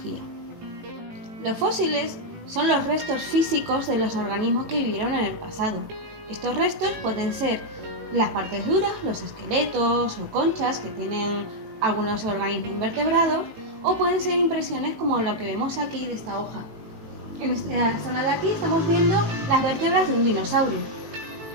Los fósiles son los restos físicos de los organismos que vivieron en el pasado. Estos restos pueden ser las partes duras, los esqueletos o conchas que tienen algunos organismos invertebrados, o pueden ser impresiones como lo que vemos aquí de esta hoja. En esta zona de aquí estamos viendo las vértebras de un dinosaurio.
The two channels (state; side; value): late; left; 18 ms